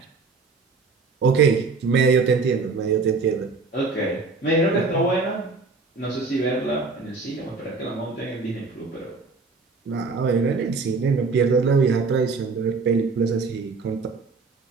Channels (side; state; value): left; quieter; 4.2 dB